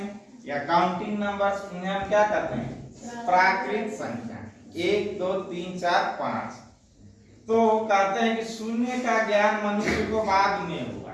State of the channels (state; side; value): identical; both; correlation 1.00